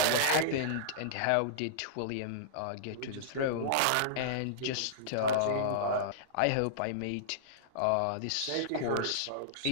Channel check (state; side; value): different; both; correlation -0.02